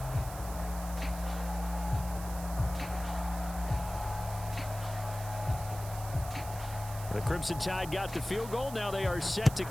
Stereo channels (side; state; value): right; noise; hiss, 13 dB below the sound